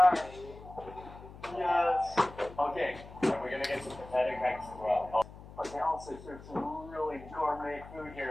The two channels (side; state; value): left; noise; hum, 17 dB below the sound